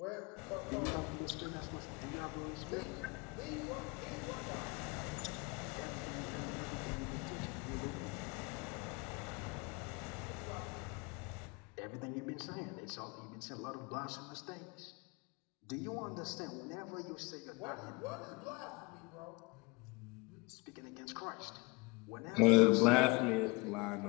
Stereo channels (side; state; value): right; quieter; 26.2 dB